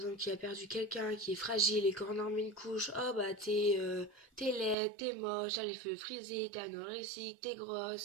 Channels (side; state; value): left; drops out; at 4.8 s